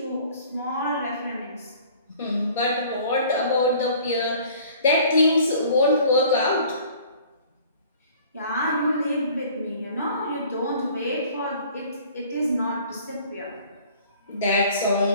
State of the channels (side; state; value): both; inverted; correlation -0.51